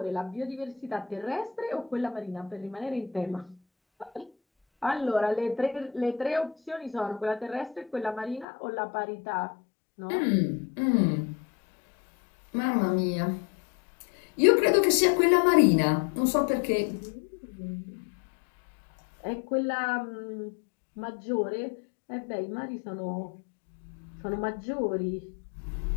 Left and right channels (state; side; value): drops out; right; at 8.5 s